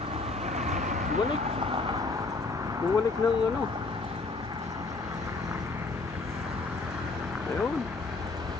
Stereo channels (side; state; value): right; quieter; 3.7 dB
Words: Bumalik ng ano. Ayun.